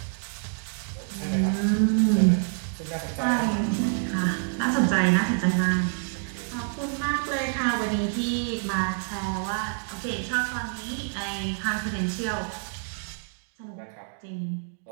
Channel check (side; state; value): left; silent; 60 dB below the other